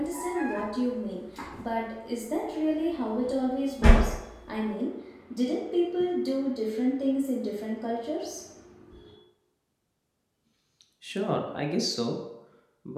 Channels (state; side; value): identical; both; correlation 1.00